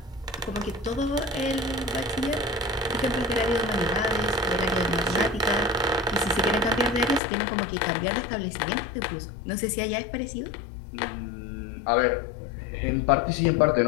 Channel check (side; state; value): right; drops out; at 7.2 s